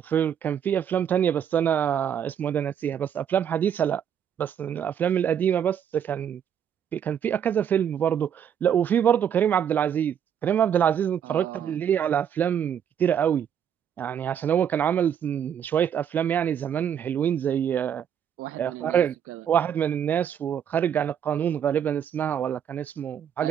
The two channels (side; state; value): left; quieter; 8.8 dB